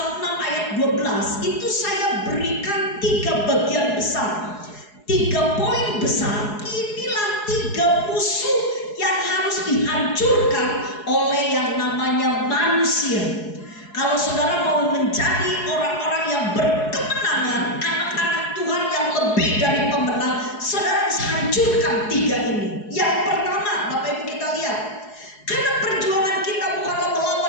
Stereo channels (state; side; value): late; right; 4.8 ms